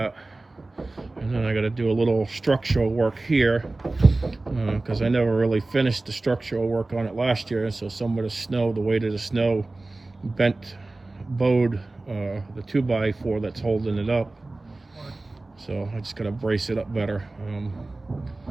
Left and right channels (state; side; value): quieter; left; 3.1 dB